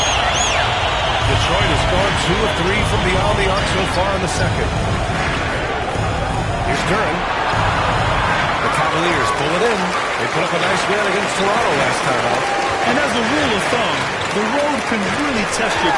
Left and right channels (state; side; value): identical; both; correlation 1.00